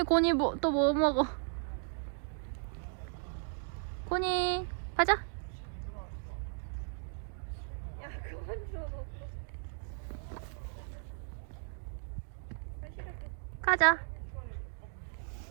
고니 또 뭐 먹어? 고니 가자. 야, 그만 줘. 가자.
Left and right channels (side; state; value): left; silent; 54 dB below the other